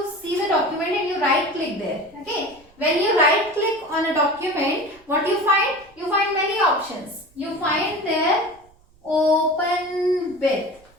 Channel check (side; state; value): right; noise; rumble, 29 dB below the sound